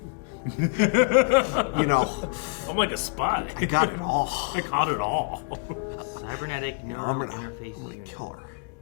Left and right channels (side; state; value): right; quieter; 34.3 dB